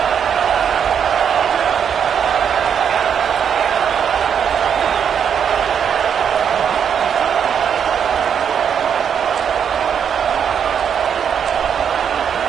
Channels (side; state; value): left; quieter; 7.9 dB